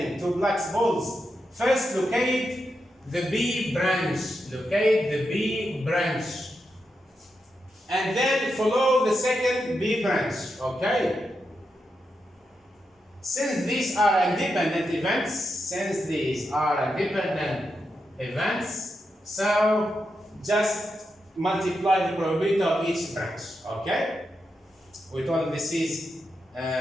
two blacks balls, first locate the B branch. Locate the B branch. And then follow the second B branch. Okay? Since these are independent events, so just multiply the probability of each branch. Okay? We told this is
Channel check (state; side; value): normal; both; correlation 0.86